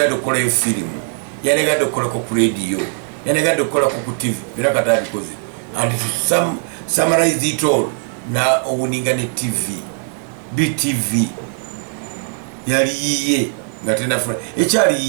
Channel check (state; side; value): silent; left; 65 dB below the other